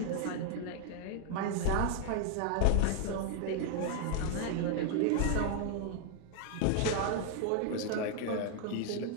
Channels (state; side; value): different; both; correlation 0.00